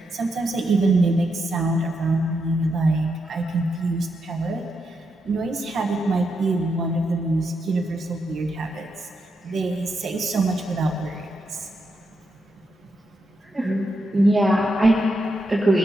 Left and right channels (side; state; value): both; normal; correlation 0.83